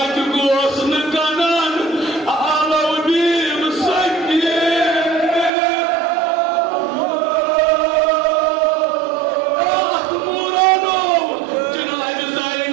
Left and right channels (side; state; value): left; drops out; at 5.5 s